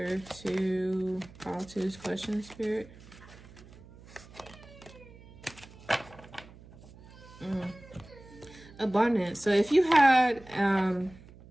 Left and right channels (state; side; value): noise; right; hum, 21 dB below the sound